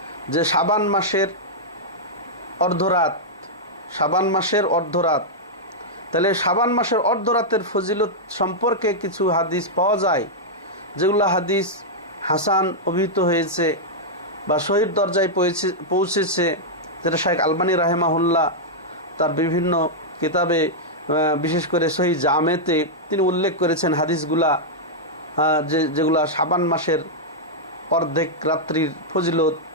যে শাবান মাসের অর্ধরাত, শাবান মাসের অর্ধরাত। তাহলে শাবান মাসের অর্ধরাতের ফজিলত সম্পর্কে কিছু হাদিস পাওয়া যায়, যেগুলো হাদিস হাসান অভিহিত হয়েছে বা সহিহ দরজায় পৌঁছেছে, যেটা শাইখ আলবানী রাহিমাহুল্লাহ তার বিভিন্ন কিতাবে, বিশেষ করে সহিহ জামেতে তিনি উল্লেখ করেছেন হাদিসগুলা, যেগুলা শাবান মাসের অর্ধেক রাত্রির ফজিলত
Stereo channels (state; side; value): normal; both; correlation -0.06